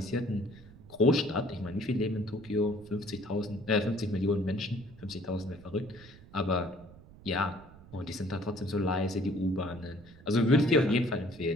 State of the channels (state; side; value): noise; right; rumble, 21 dB below the sound